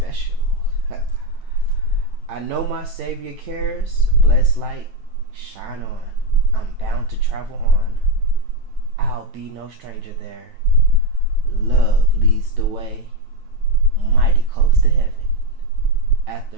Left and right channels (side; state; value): left; late; 9.2 ms